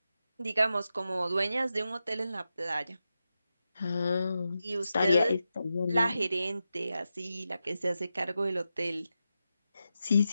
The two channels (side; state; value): both; inverted; correlation -0.89